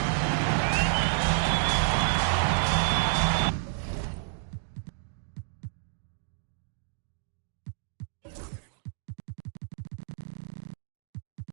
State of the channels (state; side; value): silent; left; digital silence